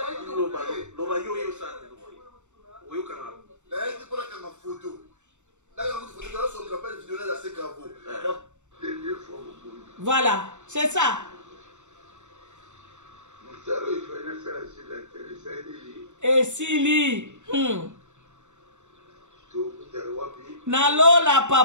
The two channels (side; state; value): left; late; 0.84 ms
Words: Voilà, c'est ça. Et Sili. Nalola